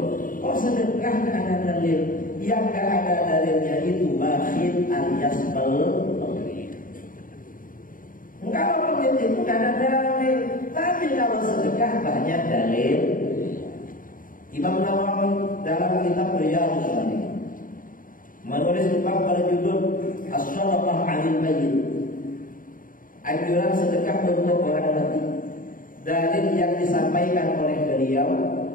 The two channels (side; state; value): right; late; 0.40 ms